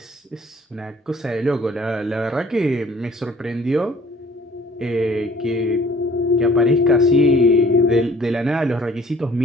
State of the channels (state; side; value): normal; both; correlation 0.54